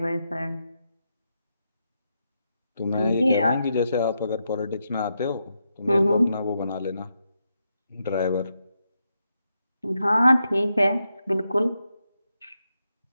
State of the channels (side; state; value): both; inverted; correlation -0.84